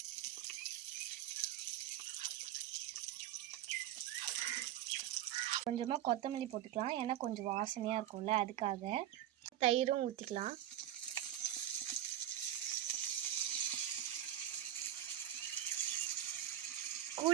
கொஞ்சமாக கொத்தமல்லி போட்டுக்கலாம், ஏன்னா கொஞ்சம் வாசனையாக இருக்கும்ல அதுக்காக. தயிரும் ஊற்றிக்கலாம்.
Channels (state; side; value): quieter; left; 12.0 dB